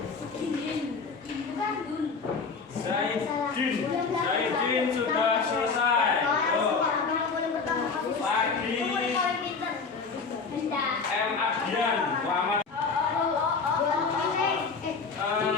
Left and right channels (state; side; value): quieter; right; 4.8 dB